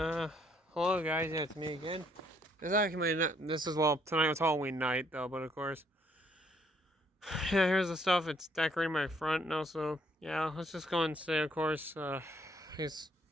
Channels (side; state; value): both; normal; correlation 0.68